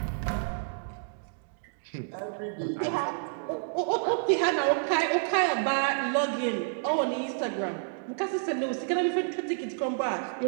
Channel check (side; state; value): left; silent; digital silence